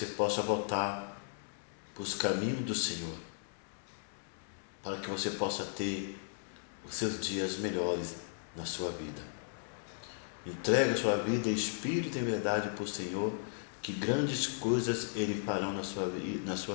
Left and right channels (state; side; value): silent; right; digital silence